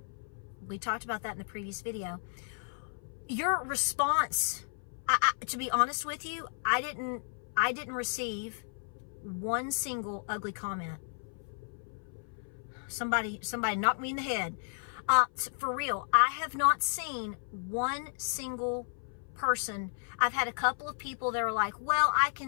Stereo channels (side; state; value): right; silent; 56 dB below the other